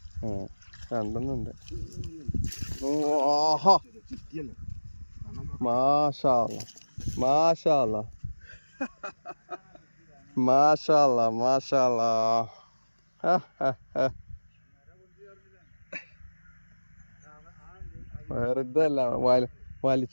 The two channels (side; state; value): both; inverted; correlation -1.00